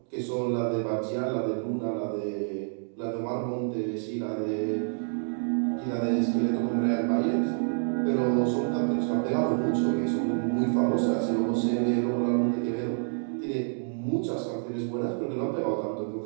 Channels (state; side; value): silent; left; digital silence